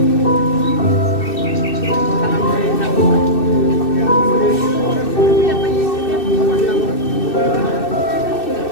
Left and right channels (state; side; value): late; right; 2.6 ms